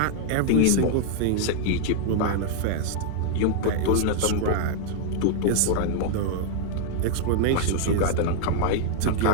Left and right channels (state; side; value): different; both; correlation -0.01